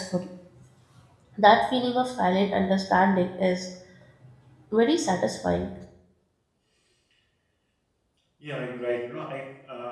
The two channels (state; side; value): identical; both; correlation 1.00